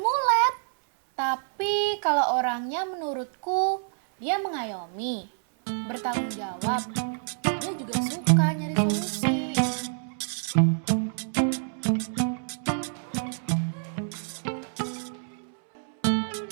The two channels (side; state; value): left; silent; 60 dB below the other